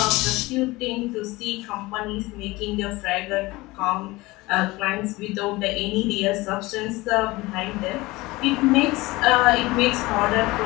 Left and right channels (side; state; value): right; quieter; 20.9 dB